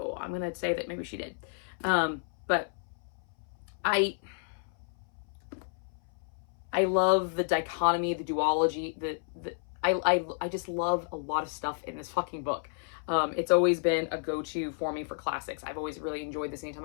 I'm gonna say that maybe she did. But I love the dichotomy, the duology, I just love a lot of stuff in this fucking book. It's always been a go-to for me for classics. I've always really enjoyed this anytime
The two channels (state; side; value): silent; right; 57 dB below the other